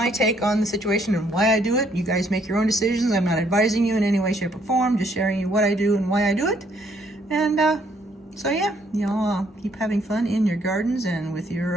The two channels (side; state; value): both; normal; correlation 0.68